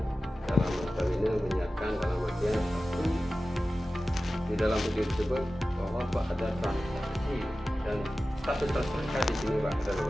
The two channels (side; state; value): both; normal; correlation 0.95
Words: dalam notabene menyiarkan dalam artian di dalam video tersebut bahwa Pak ada transaksi dan status tersangka di sini Pak.